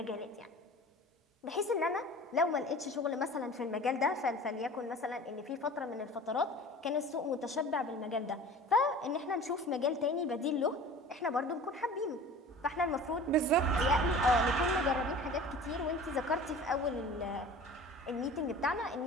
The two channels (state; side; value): normal; both; correlation 0.41